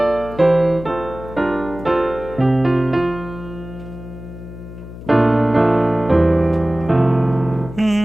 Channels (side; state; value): left; noise; hum, 14 dB below the sound